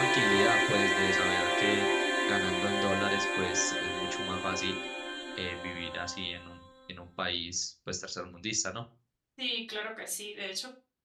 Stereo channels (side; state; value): both; identical; correlation 1.00